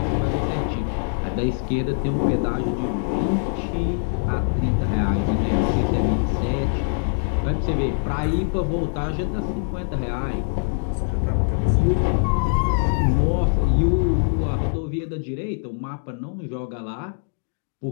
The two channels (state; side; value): silent; right; digital silence